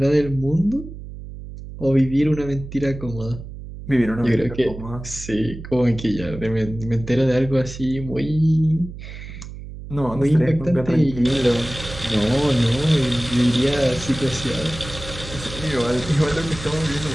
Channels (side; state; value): right; noise; hum, 12 dB below the sound